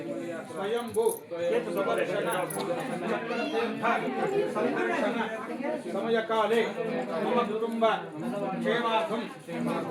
स्वयंभू సమయకాలే మమ కుటుంబ క్షేమార్థం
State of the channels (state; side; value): identical; both; correlation 1.00